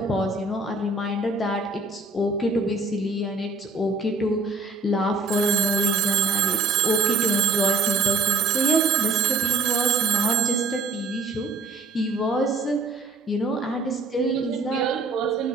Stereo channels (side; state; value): left; quieter; 3.2 dB